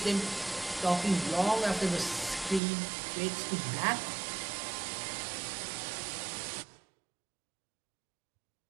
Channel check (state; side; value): drops out; left; at 2.6 s